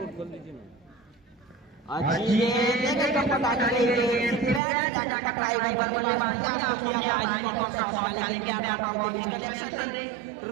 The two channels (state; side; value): drops out; left; at 4.6 s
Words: टकराई बल्लेबाज प्रयास तो किया था हेलीकॉप्टर शॉट का, लेकिन क्या ना बॉल के बीच कनेक्शन